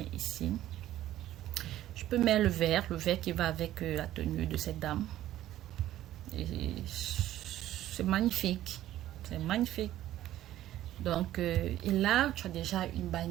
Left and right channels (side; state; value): left; quieter; 13.5 dB